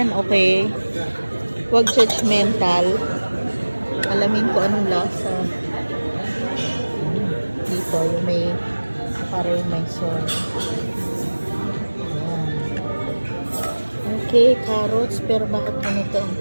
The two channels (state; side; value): inverted; both; correlation -1.00